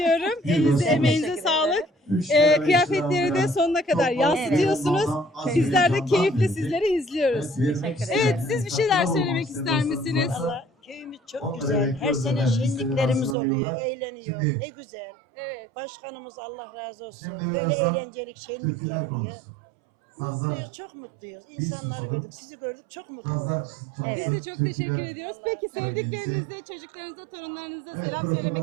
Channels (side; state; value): left; drops out; at 13.4 s